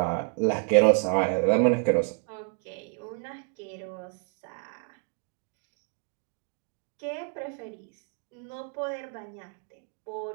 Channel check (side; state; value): left; quieter; 38.9 dB